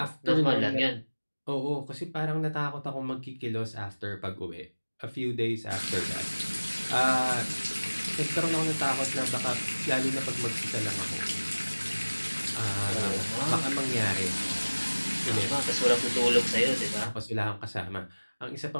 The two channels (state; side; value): inverted; both; correlation -1.00